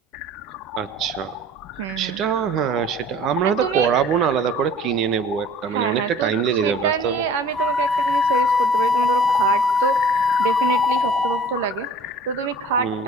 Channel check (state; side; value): normal; both; correlation 0.47